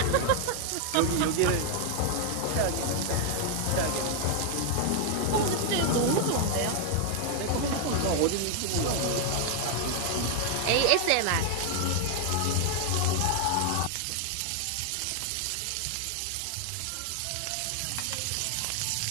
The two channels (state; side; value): different; both; correlation 0.00